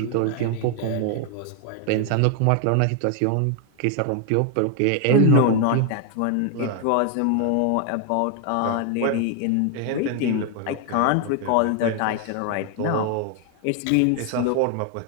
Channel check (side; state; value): both; different; correlation 0.01